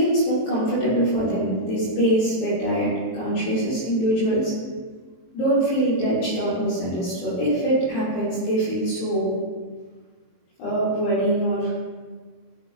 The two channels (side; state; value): right; late; 23 ms